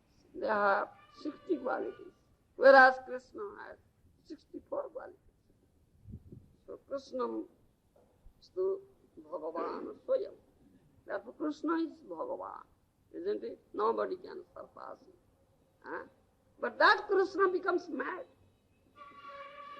they have 60 qualities, whereas Krishna has 64 qualities. So Krishna is the Bhagavan Swayam. Therefore Krishna is Bhagavan, isn't it? Nobody can surpass him. But that Krishna becomes mad.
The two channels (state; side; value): identical; both; correlation 1.00